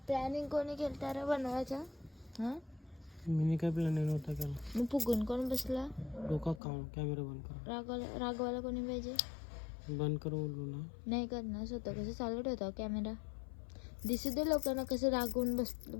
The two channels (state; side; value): drops out; right; at 6.6 s